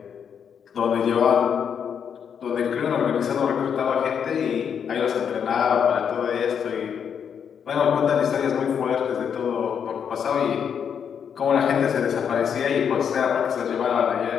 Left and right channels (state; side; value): quieter; right; 7.6 dB